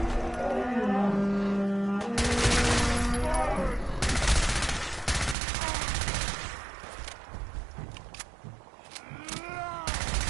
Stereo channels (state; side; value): drops out; left; at 5.4 s